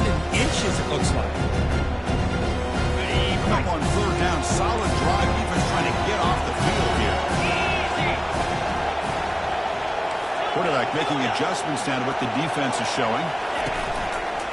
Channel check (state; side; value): identical; both; correlation 1.00